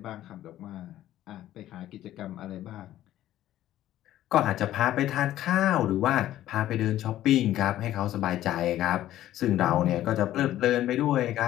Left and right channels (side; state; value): right; quieter; 13.3 dB